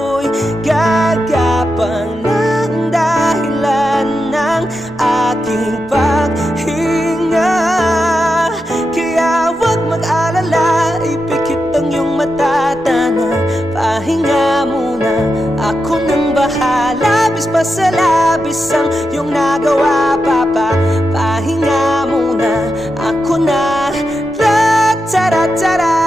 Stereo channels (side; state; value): both; normal; correlation 0.88